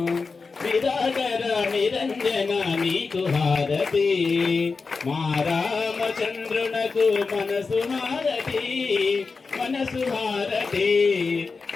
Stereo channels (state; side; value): quieter; right; 4.5 dB